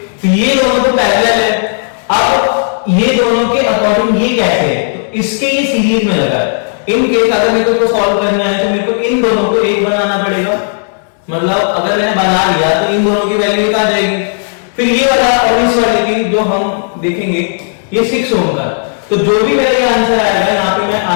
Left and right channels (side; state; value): right; silent; digital silence